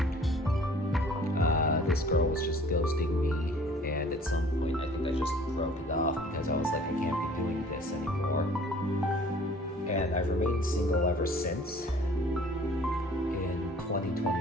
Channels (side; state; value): both; normal; correlation 0.52